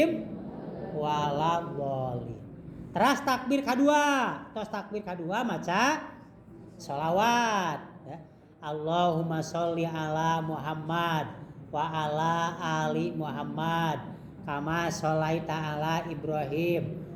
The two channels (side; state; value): both; identical; correlation 1.00